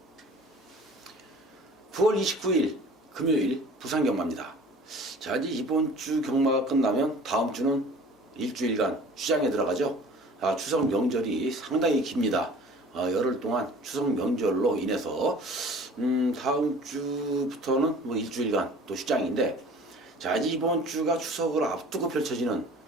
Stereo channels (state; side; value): normal; both; correlation 0.46